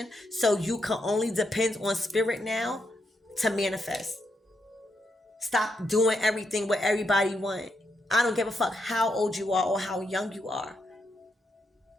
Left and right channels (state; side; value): normal; both; correlation 0.81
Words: so you can only depend on Spirit now to manifest. Stop doing everything what everybody want. I don't give a fuck how old you are or how young you are.